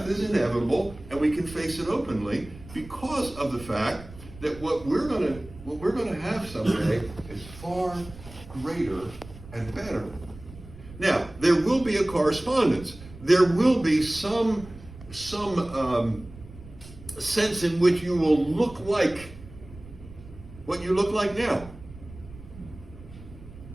is inevitable, and we can face it openly because of the fact that what we're going to have someday is far greater and better. Now, there will be a correspondence. There will be some sense in which you will look like what you look like now.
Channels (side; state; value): right; noise; rumble, 17 dB below the sound